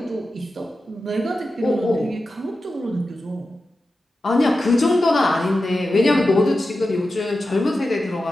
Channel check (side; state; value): both; normal; correlation 0.92